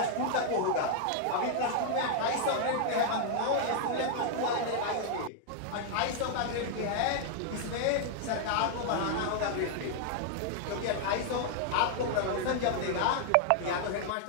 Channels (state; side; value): different; both; correlation 0.00